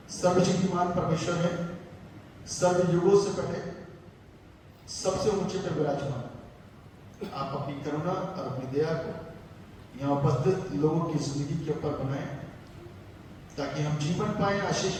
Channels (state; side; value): identical; both; correlation 1.00